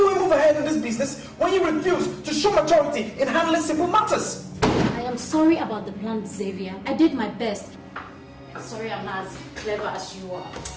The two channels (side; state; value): both; identical; correlation 1.00